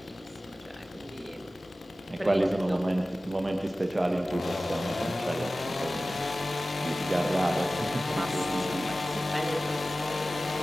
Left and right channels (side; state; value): both; normal; correlation 0.96